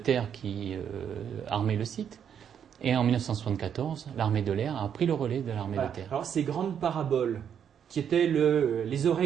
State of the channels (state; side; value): quieter; left; 8.4 dB